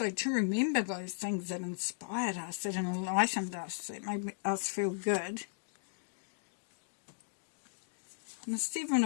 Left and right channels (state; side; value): silent; right; digital silence